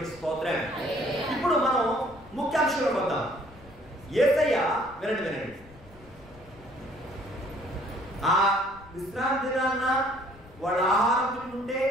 స్తోత్రం. ఇప్పుడు మనం ముఖ్యాంశంలో వద్దాం. యేసయ్య వినండి. ఆ విశ్రాంతి దినాన్న వాళ్ళ ఆహారం తింటుంటే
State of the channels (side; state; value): left; noise; rumble, 22 dB below the sound